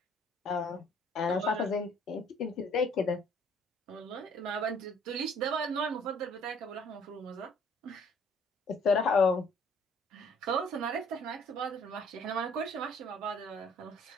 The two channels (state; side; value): normal; both; correlation 0.59